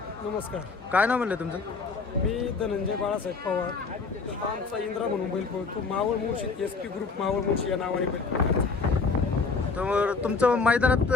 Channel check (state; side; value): quieter; right; 4.5 dB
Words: नमस्कार. काय नाव म्हणलं तुमचं? मी धनंजय बाळासाहेब पवार. आमचा इंद्रा म्हणून बैल पळतो. मावळ मुळशी SP ग्रुप मावळ मुळशी या नावाने बैल पळतो. तर तुमचं मैदानात